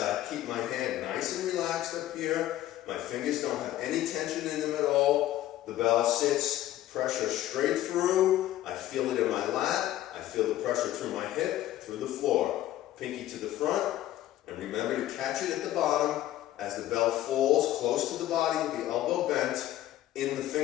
keep my hand nice and relaxed up here. My fingers don't have any tension in them at all. The bell sits, pressure straight through. I feel it in my lat. I feel the pressure through my hip, through the floor. Pinky to the front, and remember to catch it at the bottom as the bell falls close to the body with the elbow bent in the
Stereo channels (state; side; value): quieter; right; 13.8 dB